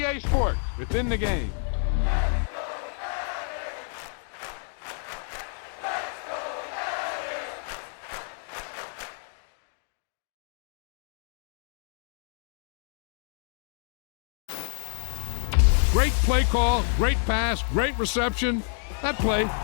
Sports, within the game. Great play call, great pass, great reception. That play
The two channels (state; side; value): silent; right; 59 dB below the other